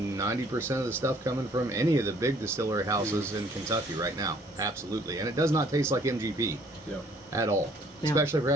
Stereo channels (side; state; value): both; normal; correlation 0.59